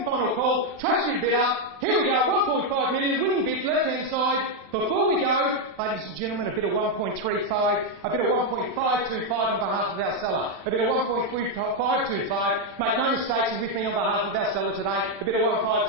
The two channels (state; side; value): late; left; 36 ms